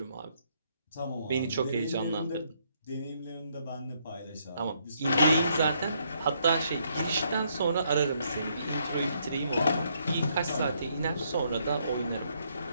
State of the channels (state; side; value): inverted; both; correlation -0.73